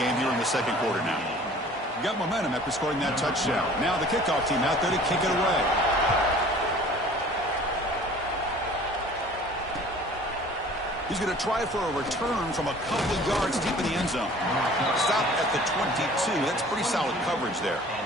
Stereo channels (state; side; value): normal; both; correlation 0.48